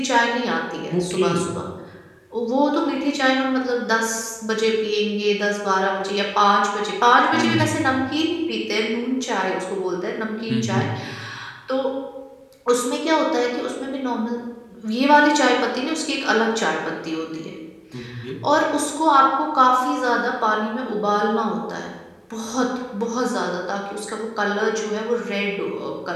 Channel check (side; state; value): both; identical; correlation 1.00